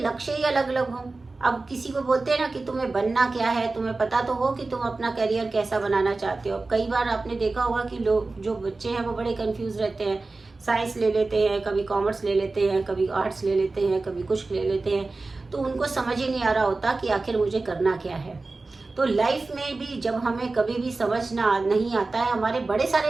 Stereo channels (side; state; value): left; quieter; 3.5 dB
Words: ही अलग अलग हों, अब किसी को बोलते हैं ना कि तुम्हें बनना क्या है, तुम्हें पता तो हो कि तुम अपना करियर कैसा बनाना चाहते हो। कई बार आपने देखा होगा कि लोग, जो बच्चे हैं वो बड़े कंफ्यूज रहते हैं, साइंस ले लेते हैं, कभी कॉमर्स ले लेते हैं, कभी आर्ट्स ले लेते हैं, कभी कुछ ले लेते हैं, तो उनको समझ ही नहीं आ रहा होता कि आखिर मुझे करना क्या है। तो लाइफ में भी जब हमें कभी भी समझना नहीं आता है, हमारे बड़े